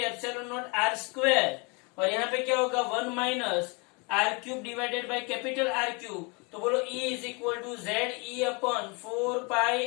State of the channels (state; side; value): quieter; right; 30.7 dB